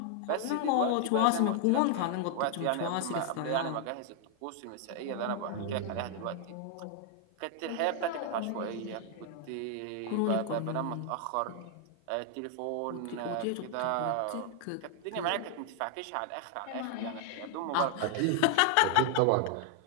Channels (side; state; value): both; different; correlation 0.00